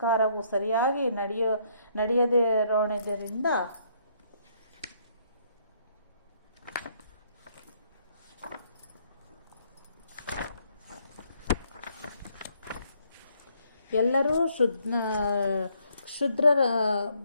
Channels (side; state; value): both; inverted; correlation -0.69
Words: ಸರಿಯಾಗಿ ನಡೆಯದಿರೋಣದಿಂದ ಎಲ್ಲರೂ ಕ್ಷುದ್ರ